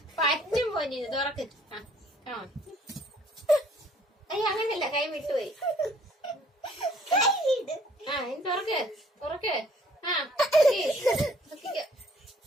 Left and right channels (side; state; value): both; normal; correlation 0.60